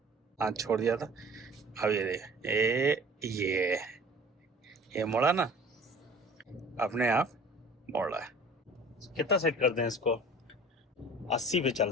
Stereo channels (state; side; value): normal; both; correlation 0.46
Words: हाथ छोड़ दिया था। अब ये देख ये मोड़ा ना, अपने आप मोड़ रहा है। कितना सेट करते हैं इसको? 80 पे